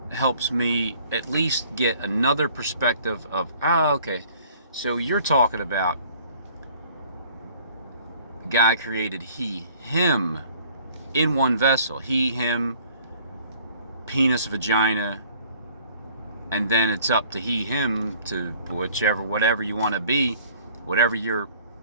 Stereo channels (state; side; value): inverted; both; correlation -0.54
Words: helps me at least get another perspective of, okay, so you're talking about God created him in one vessel. He, him, penis, vagina, and then it's up to he, him to whatever you want to be, whatever you're,